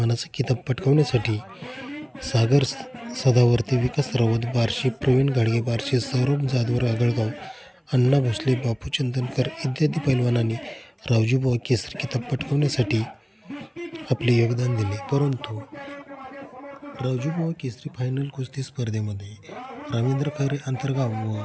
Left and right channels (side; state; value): both; identical; correlation 1.00